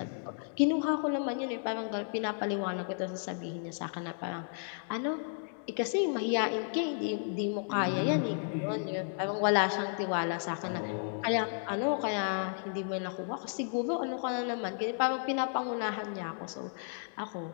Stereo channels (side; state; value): right; silent; digital silence